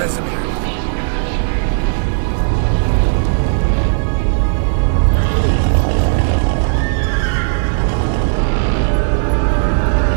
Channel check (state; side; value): silent; left; 70 dB below the other